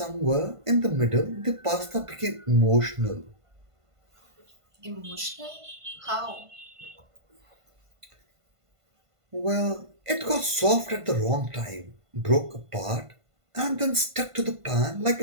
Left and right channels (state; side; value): late; left; 1.5 ms